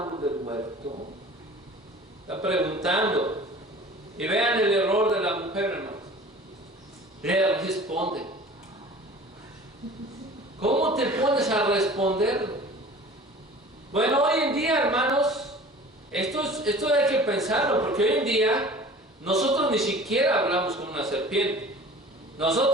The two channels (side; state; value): both; normal; correlation 0.43